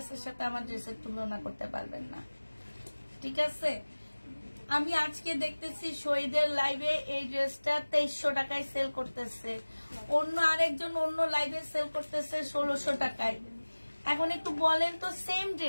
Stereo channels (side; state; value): both; inverted; correlation -1.00